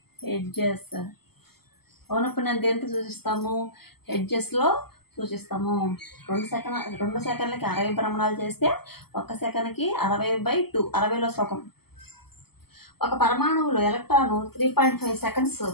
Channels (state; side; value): late; right; 0.96 ms